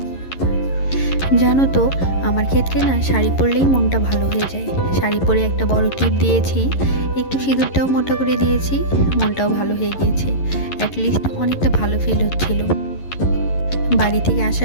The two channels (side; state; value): right; late; 11 ms